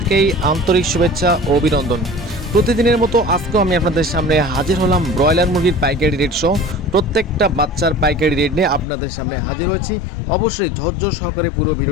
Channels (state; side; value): drops out; right; at 8.8 s